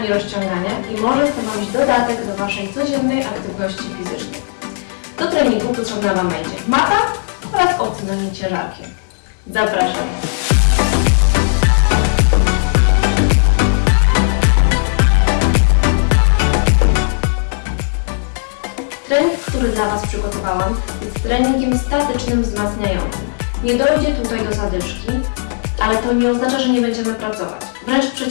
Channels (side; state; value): right; silent; digital silence